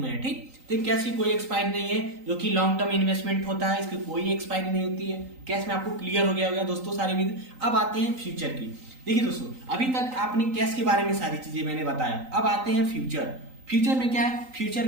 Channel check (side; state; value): left; late; 3.9 ms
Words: है, ठीक। तो कैश की कोई एक्सपायरी नहीं है, जो कि लॉन्ग टर्म इन्वेस्टमेंट होता है, इसकी कोई एक्सपायरी नहीं होती है। कैश में आपको क्लियर हो गया होगा दोस्तों सारी चीजें। अब आते हैं फ्यूचर की। देखिए दोस्तों, अभी तक आपने कैश के बारे में सारी चीजें मैंने बताया, अब आते हैं फ्यूचर में क्या है, फ्यूचर